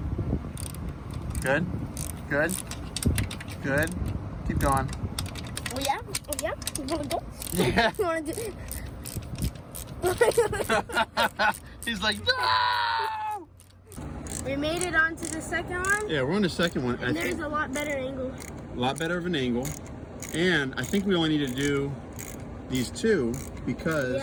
Good. Good. Good. Keep going. Oh yeah? Oh yeah? You wanna go? Yeah. You wanna do He's like, no! We made it onto the second one. Yeah, we're on the second one. And there's a lot better angle. A lot better of an angle. And I think we only need to do these two because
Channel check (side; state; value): both; identical; correlation 1.00